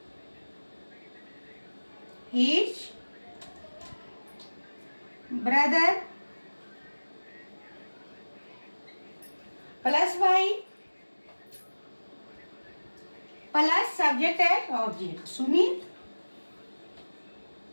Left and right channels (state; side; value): inverted; both; correlation -1.00